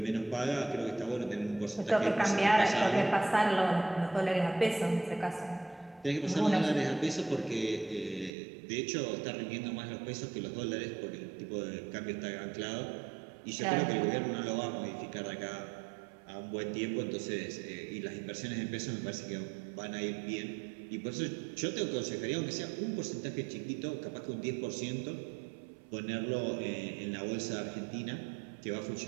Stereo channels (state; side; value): drops out; left; at 8.3 s